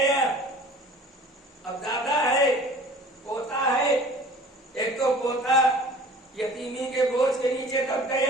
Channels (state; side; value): normal; both; correlation 0.46